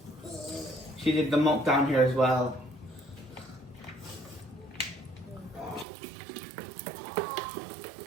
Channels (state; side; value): drops out; left; at 5.9 s